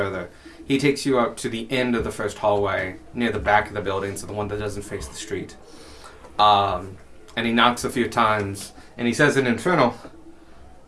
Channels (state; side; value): identical; both; correlation 1.00